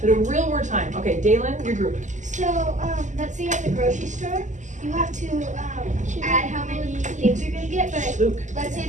But a real world time. Okay, Dalen, your group. So, let's say you're at the grocery store, you have to add how many things you're going to get, but Luke. let's say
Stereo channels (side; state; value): left; late; 0.35 ms